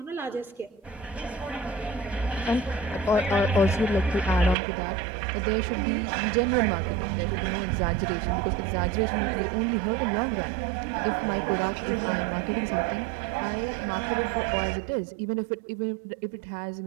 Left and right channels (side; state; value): left; drops out; at 4.5 s